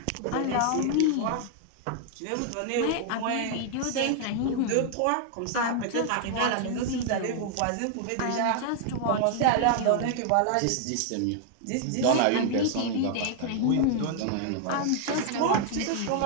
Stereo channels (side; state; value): both; different; correlation 0.00